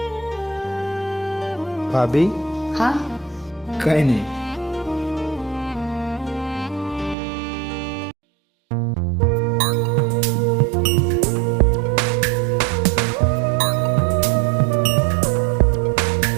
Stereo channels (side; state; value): left; drops out; at 7.2 s